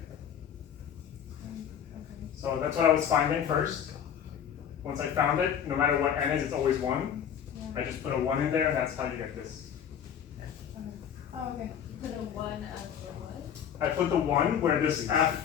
Okay. So that's what I was finding first. Once I found it, no matter what n is, it's always 1. Yeah. I just put a 1 in there, and that's how you get this. Okay. Oh, okay. Put a 1 after what? I put the 1 where this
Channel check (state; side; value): quieter; right; 8.7 dB